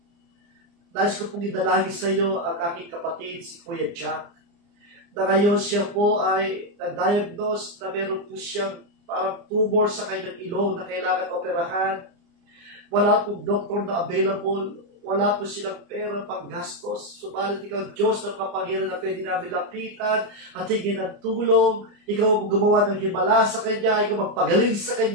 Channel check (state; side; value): late; left; 29 ms